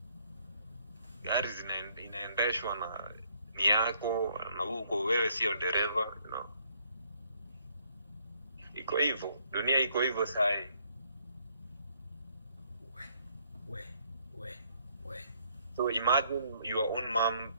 Gari inaendeshwa na ni yako, na huko wewe sio dereva, Iko hivyo. Dunia iko hivyo sai. So imagine your own mom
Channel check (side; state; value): both; inverted; correlation -0.68